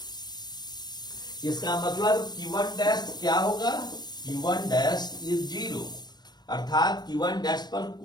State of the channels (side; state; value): right; late; 0.20 ms